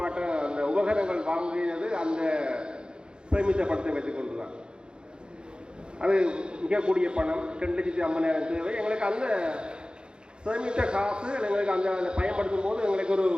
அந்த உபகரணங்கள் வாங்கியது அந்த சேமித்த பணத்தை வைத்துக் கொண்டுதான். அது மிகக்கூடிய பணம் 2,50,000 தேவை. எங்களுக்கு அந்த சேமித்த காசு எங்களுக்கு அந்த பயன்படுத்தும் போது எங்களுக்கு ஒரு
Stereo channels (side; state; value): left; late; 0.050 ms